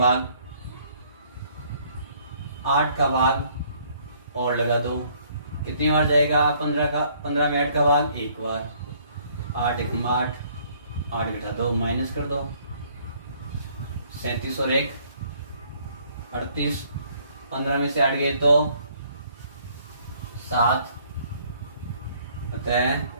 8 का भाग और लगा दो, कितनी बार जाएगा? 15 में 8 का भाग 1 बार, 8 1 8, 8 घटा 2 माइनस कर दो, 37 और 1 38, 15 में से 8 गए तो 7, अतः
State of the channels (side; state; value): both; inverted; correlation -0.62